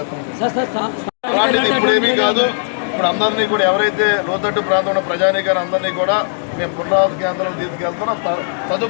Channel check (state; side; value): silent; right; digital silence